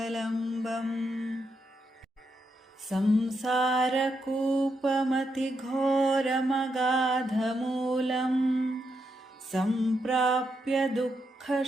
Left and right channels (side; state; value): both; normal; correlation 0.82